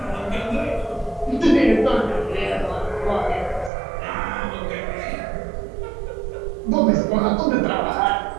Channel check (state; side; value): drops out; left; at 3.7 s